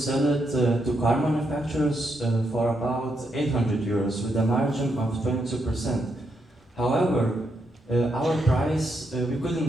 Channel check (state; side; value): normal; both; correlation 0.80